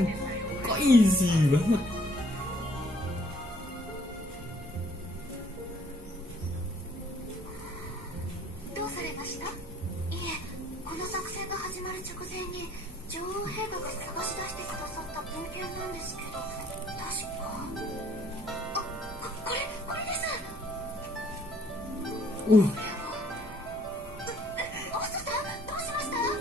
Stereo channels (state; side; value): normal; both; correlation 0.61